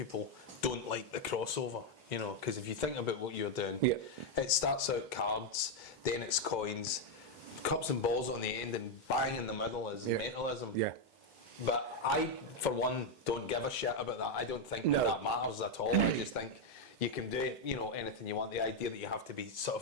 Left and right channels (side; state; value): both; normal; correlation 0.02